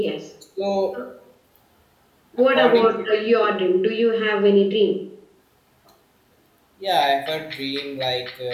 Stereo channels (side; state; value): both; identical; correlation 1.00